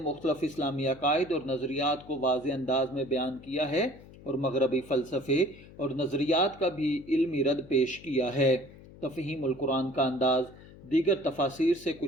اسلامی عقائد اور نظریات کو واضح انداز میں بیان کیا ہے اور مغربی فلسفے اور نظریات کا بھی علمی رد پیش کیا ہے۔ تفہیم القرآن کا انداز دیگر تفاسیر سے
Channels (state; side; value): noise; left; hum, 20 dB below the sound